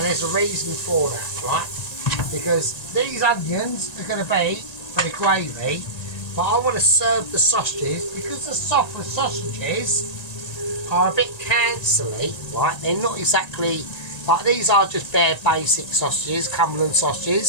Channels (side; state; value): right; late; 1.9 ms